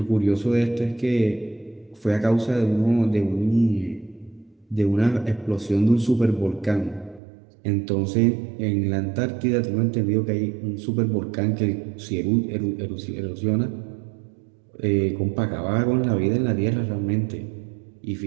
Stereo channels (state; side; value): drops out; left; at 7.2 s